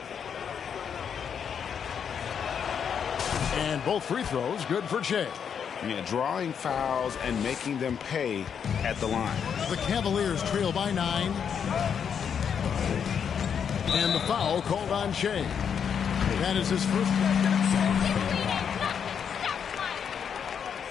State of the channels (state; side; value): quieter; right; 7.5 dB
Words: And both free throws good for Shea. Yeah, drawing fouls and making them pay at the line. The Cavaliers trail by 9. And the foul called on Shea. That is his first.